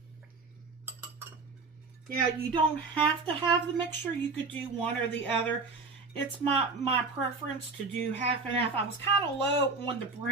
Yeah, you don't have to have the mixture. You could do one or the other. It's my preference to do half and half. I was kind of low on the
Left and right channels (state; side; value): quieter; left; 4.0 dB